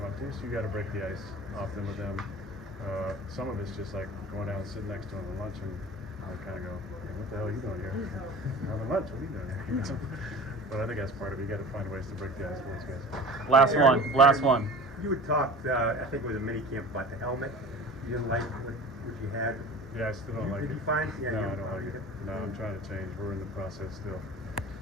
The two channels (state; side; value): normal; both; correlation 0.39